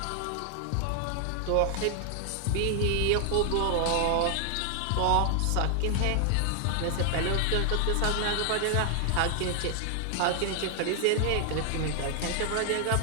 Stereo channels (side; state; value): both; different; correlation 0.00